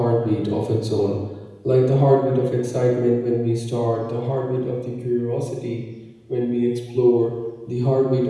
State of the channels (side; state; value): both; identical; correlation 1.00